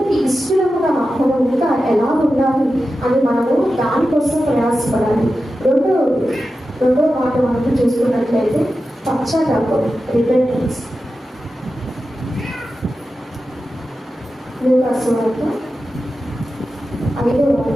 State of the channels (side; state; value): both; normal; correlation 0.92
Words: ఇష్టముగా మనం ఇంకా ఎలా ఉండాలి అని మనము దానికోసం ప్రయాసపడాలి. రెండో మాట మనం చూసుకున్నట్లయితే పశ్చాత్తాపం, రిపెంటెన్స్. లూకా సువార్త 5వ